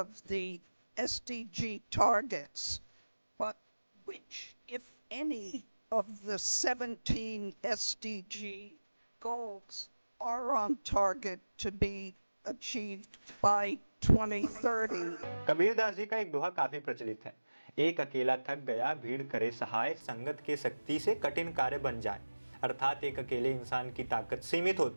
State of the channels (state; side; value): inverted; both; correlation -1.00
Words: the SDG targets, but which, if any, of the 17 SDG goals are on target to be achieved by 2030? Kabirdas ji का एक दोहा काफी प्रचलित है। एक अकेला थक गया, भीड़ करे सहाय, संगत के शक्ति से कठिन कार्य बन जाए। अर्थात एक अकेले इंसान की ताकत सीमित